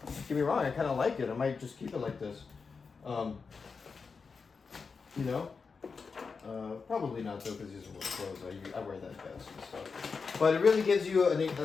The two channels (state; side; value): quieter; right; 5.0 dB